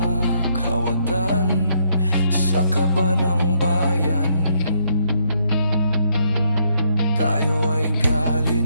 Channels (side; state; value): both; inverted; correlation -0.72